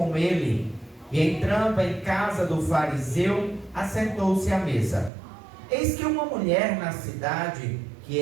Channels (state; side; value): drops out; left; at 5.1 s